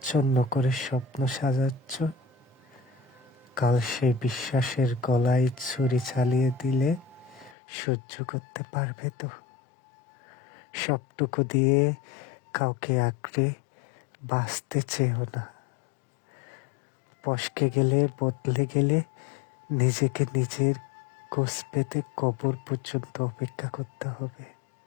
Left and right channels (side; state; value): right; drops out; at 7.6 s